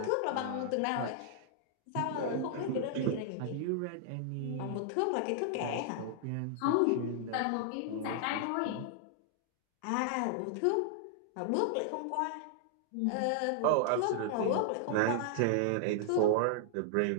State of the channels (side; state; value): both; different; correlation -0.01